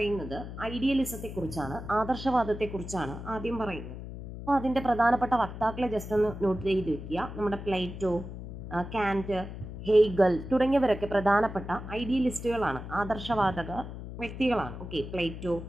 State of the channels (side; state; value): left; noise; hum, 10 dB below the sound